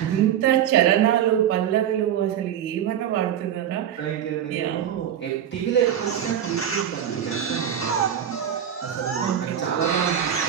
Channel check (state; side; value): quieter; left; 9.7 dB